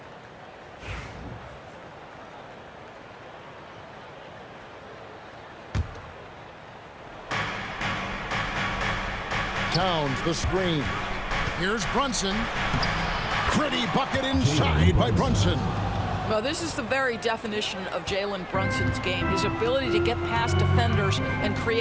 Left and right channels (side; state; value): both; identical; correlation 1.00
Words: Towns the screen. Here's Brunson. Pretty bucket inside by Brunson. Well, this is the very definition of Jalen Brunson's game. His ability to get past defenders and